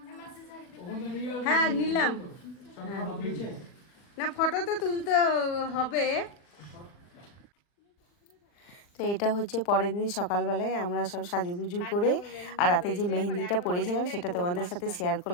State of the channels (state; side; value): late; right; 39 ms